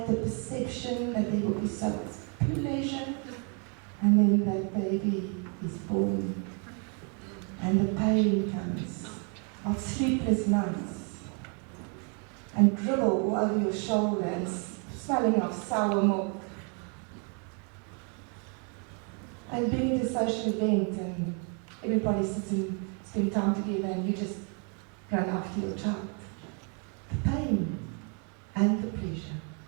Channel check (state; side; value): quieter; left; 37.9 dB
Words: the perception that there will be so much pleasure, and then that baby is born, and the pain comes of sleepless nights, and dribble all over your shoulder and smelling of sour milk, and being at a social event and everybody sits and spend time together and you just run after your child. The pain and the pleasure.